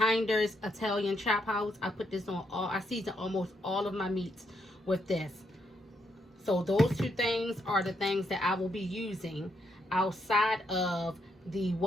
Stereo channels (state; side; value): normal; both; correlation 0.77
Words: Italian Chop House. I put this on I season almost all of my meats with this. So those two things are the things that I will be using outside of the